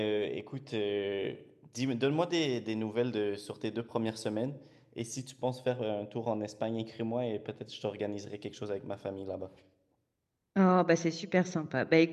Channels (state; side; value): identical; both; correlation 1.00